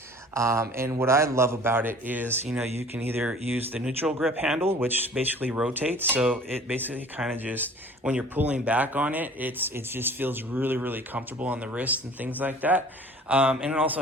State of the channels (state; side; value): normal; both; correlation 0.48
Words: And what I love about it is, you can either use the neutral grip handle, which basically rotates. So it basically kind of just, when you're pulling back on it, it just feels really, really comfortable on the wrist and things like that. And it also